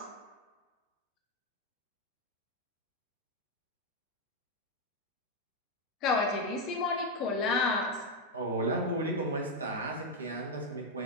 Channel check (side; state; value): both; normal; correlation 0.03